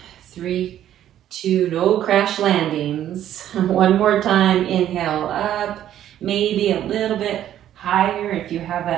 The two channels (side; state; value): left; quieter; 11.5 dB